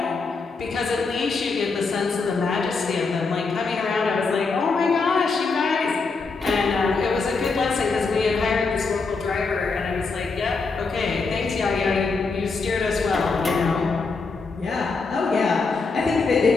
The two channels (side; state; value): right; quieter; 4.3 dB